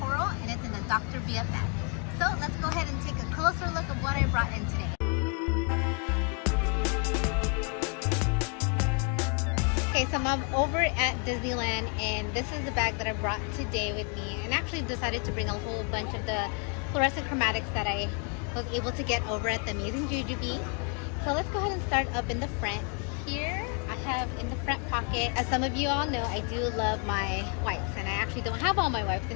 and it's in the Dr. BFF. So let's go ahead and take a closer look of what I brought in today. Okay, so I'm over at Disneyland, and this is the bag that I brought today with me, and actually decided to bring a whole bunch of the fluorescent chromatics that I was able to get over at the amazing Jujube. So let's go ahead and start up in the front. Here I have in the front pocket, as some of you all know, I do love my wipes, and I actually don't have all my wipes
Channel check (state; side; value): quieter; right; 37.6 dB